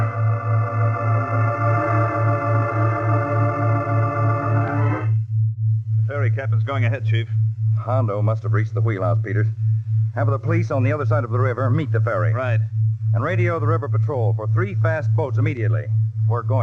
The ferry captain's going ahead, Chief. Hondo must have reached the wheelhouse, Peters. Have the police on the other side of the river meet the ferry. Right. And radio the river patrol for 3 fast boats immediately. We're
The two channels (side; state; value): both; identical; correlation 1.00